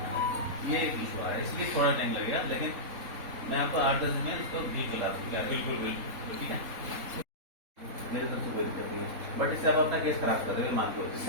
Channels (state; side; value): late; left; 3.8 ms